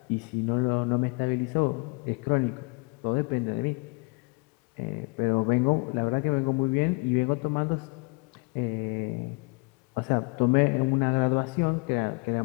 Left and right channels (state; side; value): quieter; right; 30.2 dB